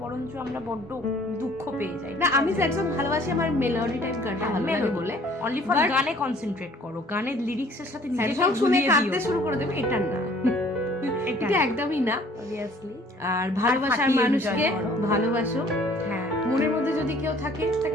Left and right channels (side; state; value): both; normal; correlation 0.55